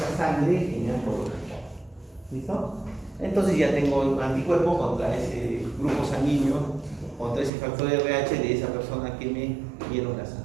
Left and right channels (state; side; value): drops out; left; at 7.5 s